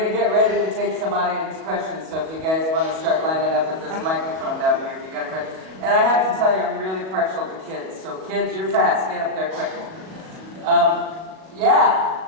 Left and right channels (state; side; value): late; left; 37 ms